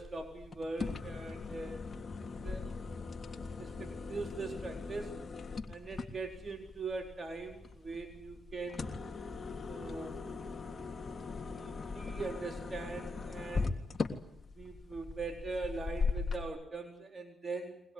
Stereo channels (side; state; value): both; normal; correlation 0.83